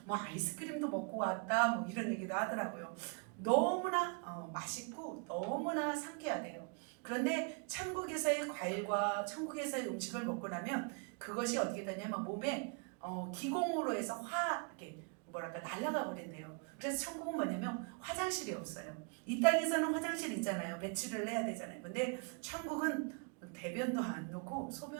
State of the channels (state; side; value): quieter; left; 36.1 dB